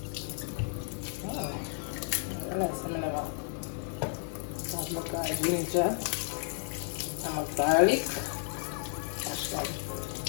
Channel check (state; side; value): silent; right; 56 dB below the other